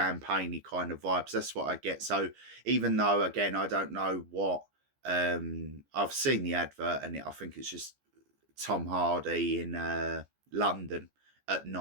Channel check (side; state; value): left; late; 14 ms